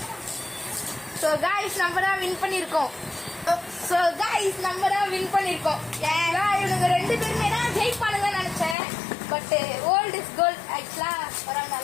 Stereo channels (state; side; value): drops out; right; at 8.8 s